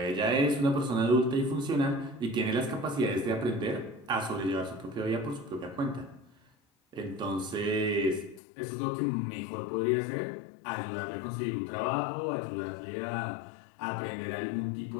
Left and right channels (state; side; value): drops out; right; at 8.4 s